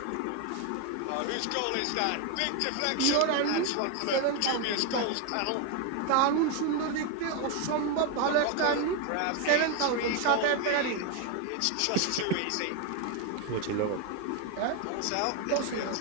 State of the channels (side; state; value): both; different; correlation 0.01